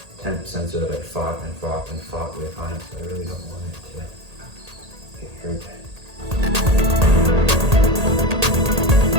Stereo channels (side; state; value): left; late; 1.8 ms